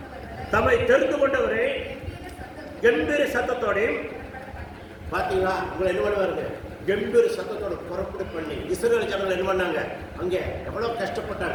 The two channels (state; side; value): identical; both; correlation 1.00